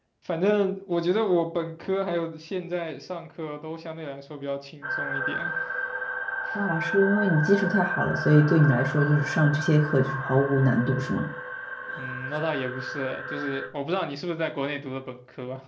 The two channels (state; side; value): identical; both; correlation 1.00